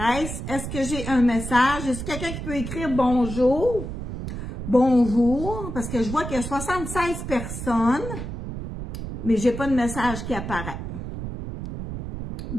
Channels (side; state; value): right; noise; rumble, 7 dB below the sound